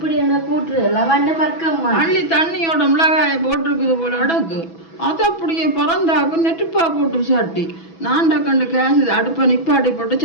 என்ன கூட்டுறது பக்கம் அள்ளி தண்ணியோட மிளகாயை போட்டிருக்குது போல அடக்கு. அது அப்படியே பறந்தாக்கு நெட்டுப்பா போட்டு சட்டி நான் டக்கண்டு கேஸ் அடுப்பை நிப்பாட்டி போட்டு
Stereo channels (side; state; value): right; late; 6.1 ms